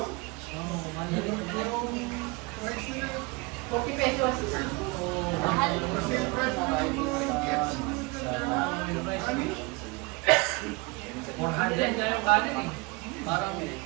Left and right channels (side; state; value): left; quieter; 26.4 dB